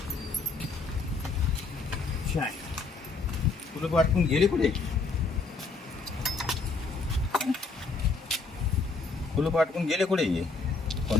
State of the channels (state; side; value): quieter; right; 4.0 dB